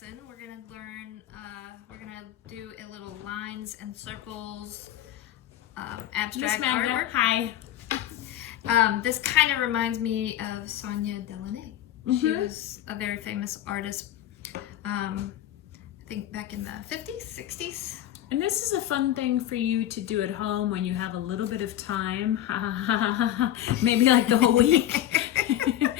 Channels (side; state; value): right; quieter; 12.3 dB